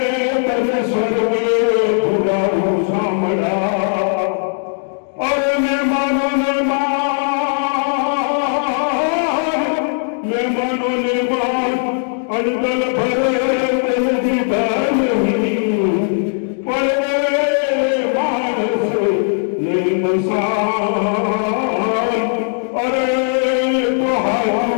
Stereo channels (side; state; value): right; silent; digital silence